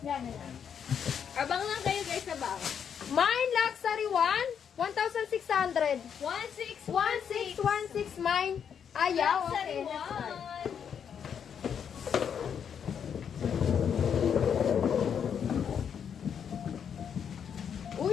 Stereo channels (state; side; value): quieter; right; 7.8 dB